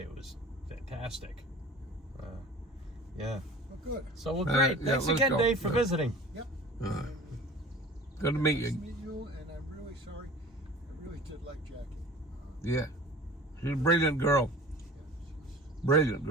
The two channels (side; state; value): both; normal; correlation 0.42